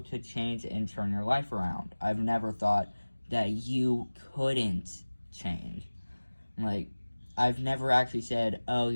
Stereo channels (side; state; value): both; inverted; correlation -1.00